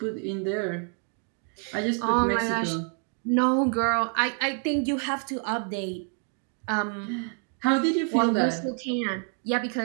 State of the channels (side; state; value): left; quieter; 39.5 dB